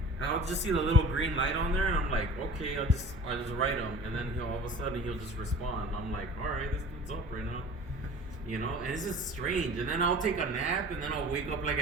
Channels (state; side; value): normal; both; correlation 0.43